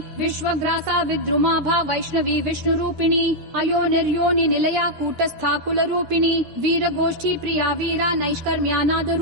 विश्वग्रासा विद्रुमाभा वैष्णवी विष्णु रूपिणी अयो निर्योनि निलया कूटस्था कुल रूपिणी वीर गोष्ठी प्रिया वीरा नैष्कर्म्यानाद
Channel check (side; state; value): left; late; 13 ms